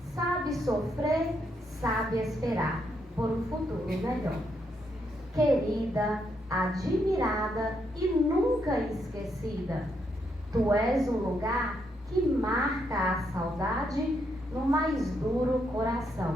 sabe sofrer, sabe esperar por um futuro melhor. Querida, admirada e nunca esquecida, tu és um lugar que marca a saudade no mais duro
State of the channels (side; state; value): both; normal; correlation 0.77